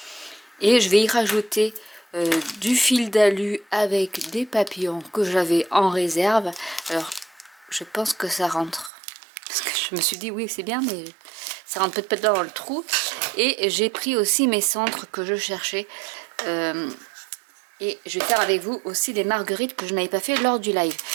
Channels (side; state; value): left; drops out; at 8.9 s